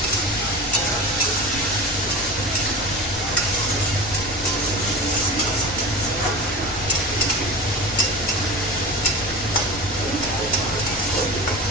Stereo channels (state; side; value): noise; left; rumble, 14 dB below the sound